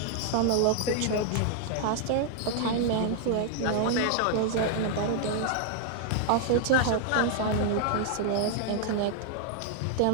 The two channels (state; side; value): different; both; correlation 0.00